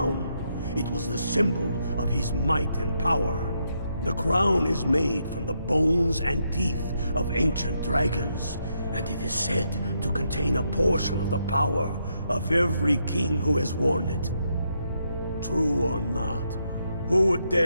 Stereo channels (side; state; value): both; inverted; correlation -0.79